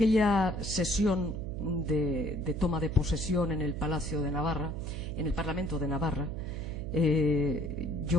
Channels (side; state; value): right; noise; hum, 9 dB below the sound